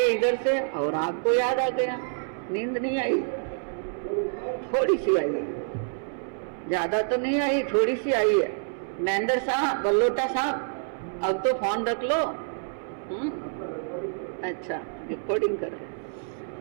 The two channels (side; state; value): left; silent; 60 dB below the other